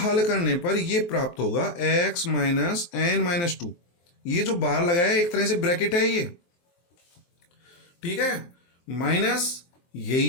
करने पर ये प्राप्त होगा x माइनस n माइनस 2। ये जो बाहर लगाया है एक तरह से ब्रैकेट है ये, ठीक है, माइनस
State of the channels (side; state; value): right; late; 23 ms